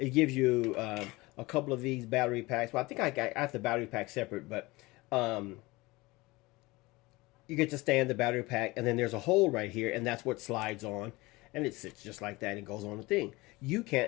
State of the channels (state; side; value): quieter; right; 22.0 dB